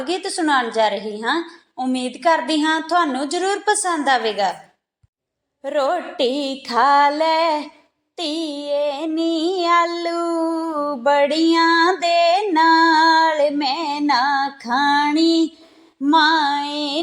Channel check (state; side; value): identical; both; correlation 1.00